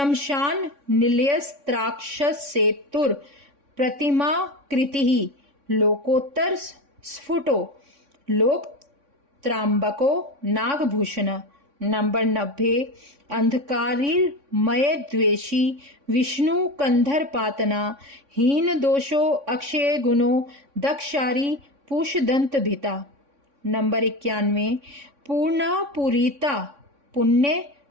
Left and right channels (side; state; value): left; late; 3.6 ms